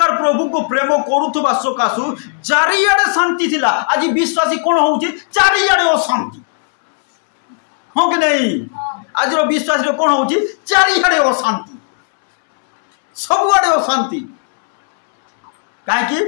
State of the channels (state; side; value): silent; right; 68 dB below the other